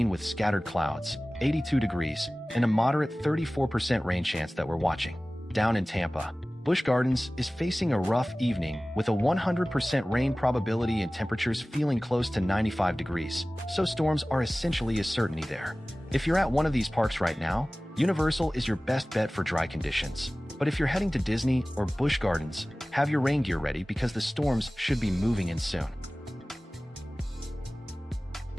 with scattered clouds, 82 degrees, and a moderate 34% rain chance that we're watching. Down in Tampa, Busch Gardens is facing a rough evening with a 100% rain probability and temperatures feeling close to 95 degrees, so storms are essentially a certainty there. If you're at one of these parks right now, Universal is your best bet for dry conditions. But if you're heading to Disney or Busch Gardens, have your rain gear ready because the storms should be moving in soon.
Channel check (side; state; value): both; normal; correlation 0.98